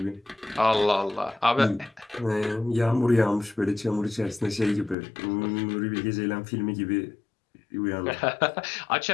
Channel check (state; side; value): drops out; right; at 5.0 s